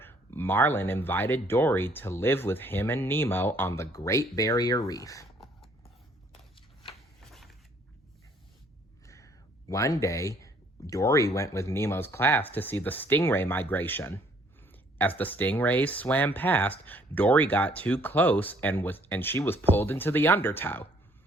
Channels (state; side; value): normal; both; correlation 0.62